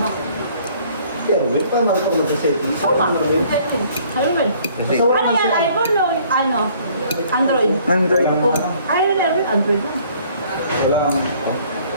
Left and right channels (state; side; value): inverted; both; correlation -0.58